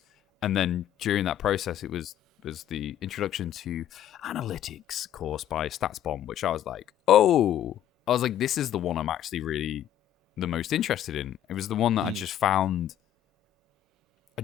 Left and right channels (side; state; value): right; quieter; 11.1 dB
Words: and then during that process it was the introduction to analytics course by StatsBomb, which I was like, this is the one I'm actually really the most interested in. It was the one that I just found